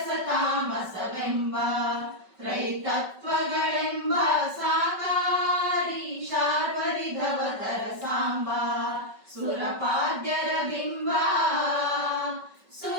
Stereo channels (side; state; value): left; late; 5.3 ms